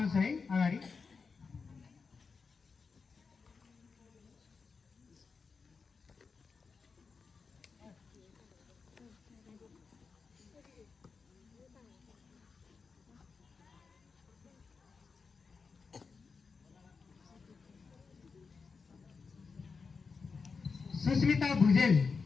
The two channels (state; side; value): quieter; right; 5.0 dB